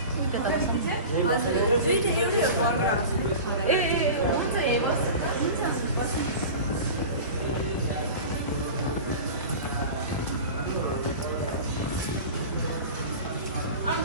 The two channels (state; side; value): inverted; both; correlation -0.34